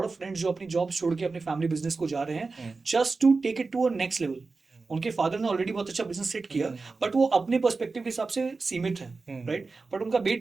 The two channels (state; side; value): quieter; left; 4.0 dB